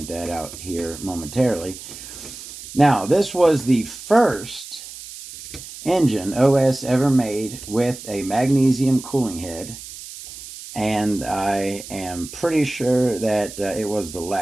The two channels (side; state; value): right; noise; hiss, 13 dB below the sound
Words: that out here momentarily. Now, this was the first engine OS ever made with a magnesium cooling head, and I am pretty sure that it was the